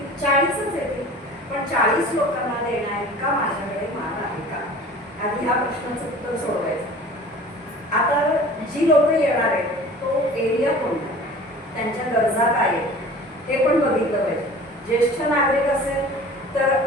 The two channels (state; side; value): normal; both; correlation 0.42